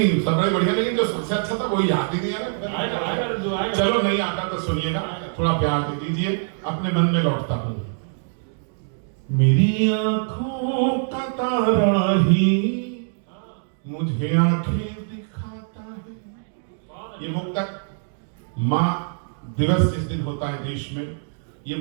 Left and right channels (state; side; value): silent; left; 63 dB below the other